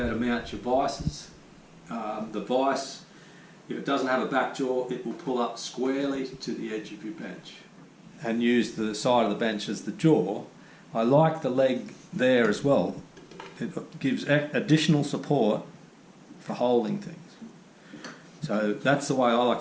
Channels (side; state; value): both; identical; correlation 1.00